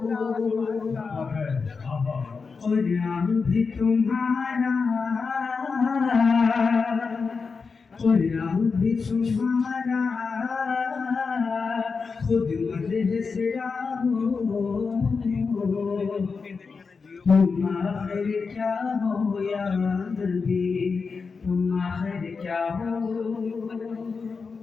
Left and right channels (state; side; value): quieter; right; 4.9 dB